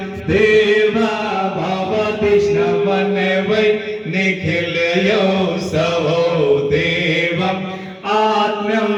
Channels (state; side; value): identical; both; correlation 1.00